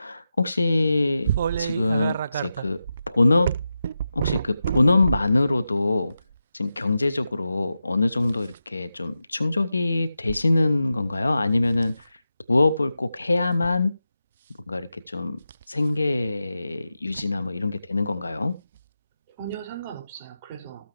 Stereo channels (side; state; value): both; inverted; correlation -0.90